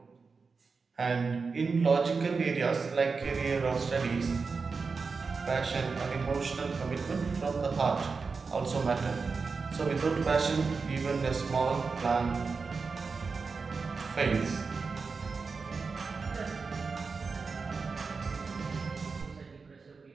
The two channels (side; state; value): left; quieter; 4.7 dB